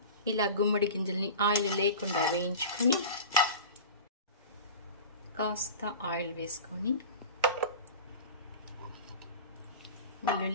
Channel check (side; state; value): both; inverted; correlation -0.33